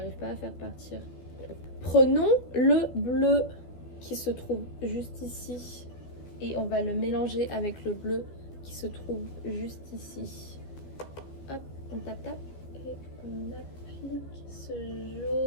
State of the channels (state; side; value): late; right; 15 ms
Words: pas à faire partir. Prenons le bleu qui se trouve juste ici et on va le mélanger avec le bleu qui se trouve juste ici. Hop, on tape et on applique ce